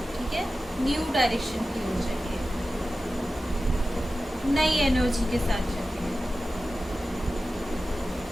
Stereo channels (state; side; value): normal; both; correlation 0.94